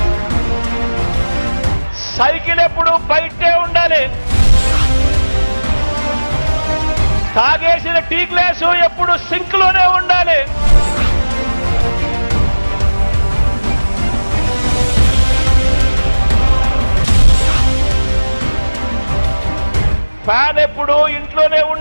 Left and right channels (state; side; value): inverted; both; correlation -1.00